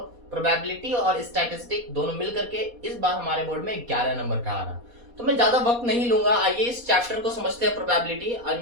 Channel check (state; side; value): late; left; 4.2 ms